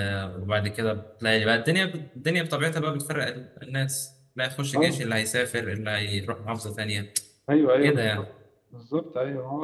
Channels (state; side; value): identical; both; correlation 1.00